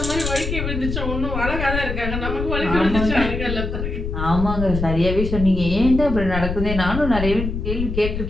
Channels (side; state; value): left; noise; rumble, 4 dB below the sound